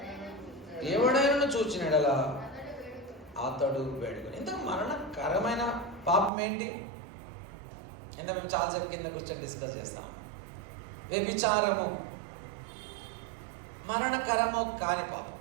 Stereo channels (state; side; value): drops out; left; at 6.3 s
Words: ఎవడైనా చూచినడలా అతడు వేడుకొని. ఇంత మరణకరమైన పాపం ఏంటి? ఇంత మేము చాలాసేపు కింద కూర్చొని డిస్కస్ చేస్తాం. వ్యభిచారము మరణకరము కాని